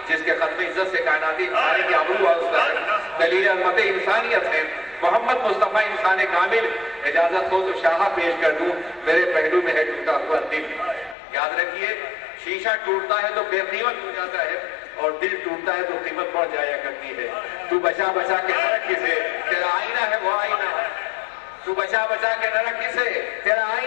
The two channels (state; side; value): drops out; right; at 11.2 s